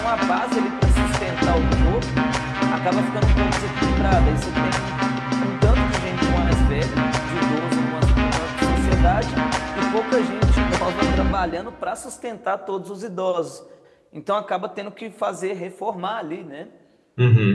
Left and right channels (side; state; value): both; identical; correlation 1.00